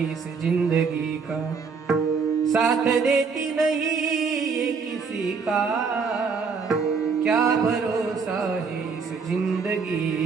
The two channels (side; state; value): left; quieter; 5.3 dB